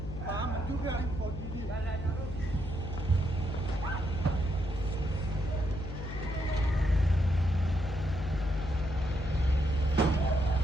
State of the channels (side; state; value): left; noise; hum, 7 dB below the sound